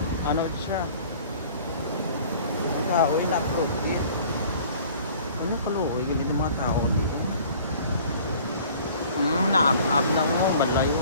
Ano siya? Kaoy na protein. Ano paluoy gali ng mga tao dito? Naab-ab na mo, malayo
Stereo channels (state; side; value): inverted; both; correlation -0.50